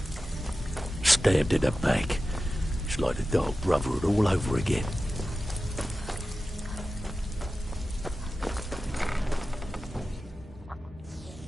Stabbed in the back. It's like the Dark Brotherhood all over again.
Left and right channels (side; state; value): both; normal; correlation 0.94